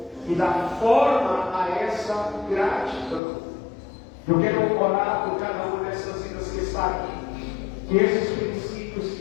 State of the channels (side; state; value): right; drops out; at 3.2 s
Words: e dá forma a essa gratidão. Eu quero orar por cada uma dessas vidas que está aqui, que esses princípios,